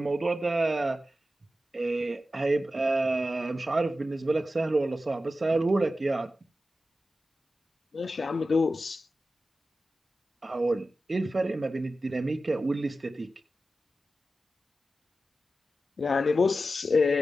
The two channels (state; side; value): normal; both; correlation 0.93